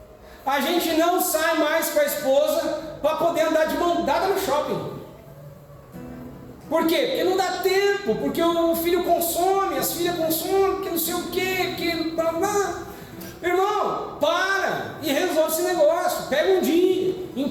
A gente não sai mais com a esposa para poder andar de mão dada no shopping. Por quê? Porque não dá tempo, porque o filho consome, as filhas consomem, porque não sei o quê, porque... Irmão, para e resolve esse negócio. Pega um dia,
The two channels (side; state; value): both; identical; correlation 1.00